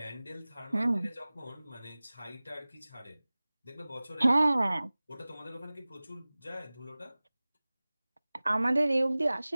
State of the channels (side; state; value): both; inverted; correlation -0.99